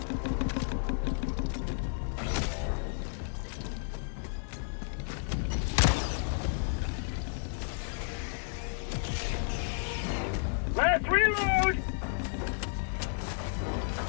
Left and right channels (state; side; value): silent; right; digital silence